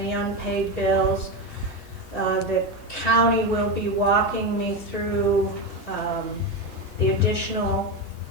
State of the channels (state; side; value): normal; both; correlation 0.15